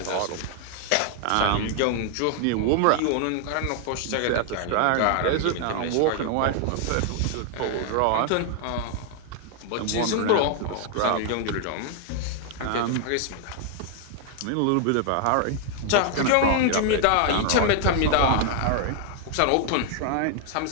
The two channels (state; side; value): different; both; correlation 0.00